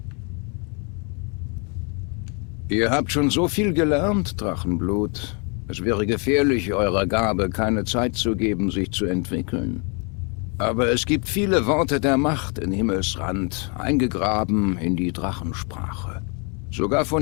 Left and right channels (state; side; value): quieter; right; 35.7 dB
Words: Ihr habt schon so viel gelernt, Drachenblut. Es wäre gefährlich, eurer Gabe keine Zeit zu geben, sich zu entwickeln. Aber es gibt viele Worte der Macht in Himmelsrand, eingegraben in die Drachensprache. Sogar von